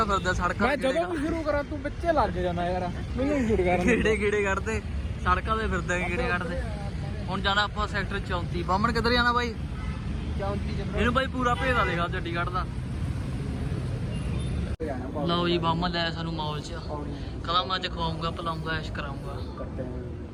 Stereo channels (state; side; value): identical; both; correlation 1.00